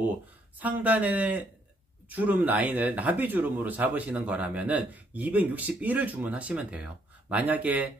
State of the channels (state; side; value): normal; both; correlation 0.71